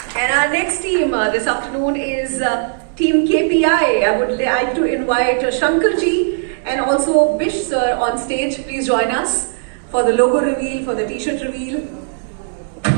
And our next team this afternoon is Team KPI. I would like to invite Shankarji and also Bish sir on stage. Please join us for the logo reveal, for the t-shirt reveal. The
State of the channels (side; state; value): left; silent; digital silence